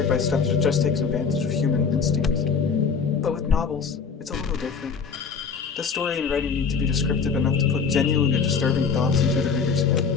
by stuff that just takes advantage of human instincts. But with novels, it's a little different. The story and writing need to be descriptive enough to put genuinely disturbing thoughts into the reader's head.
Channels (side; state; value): right; quieter; 5.7 dB